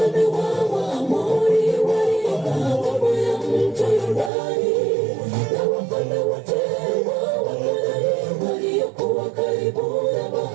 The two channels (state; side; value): drops out; left; at 4.3 s